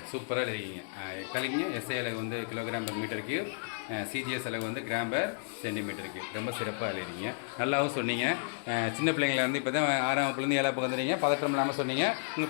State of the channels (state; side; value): silent; right; digital silence